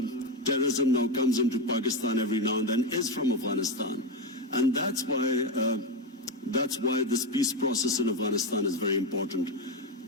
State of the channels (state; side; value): normal; both; correlation 0.12